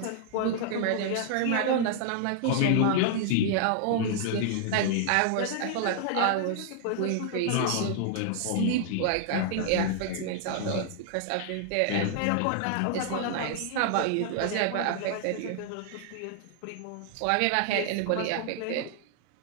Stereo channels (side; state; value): both; different; correlation 0.00